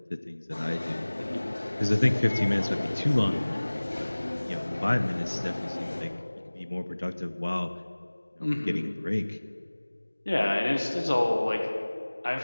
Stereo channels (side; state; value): both; inverted; correlation -1.00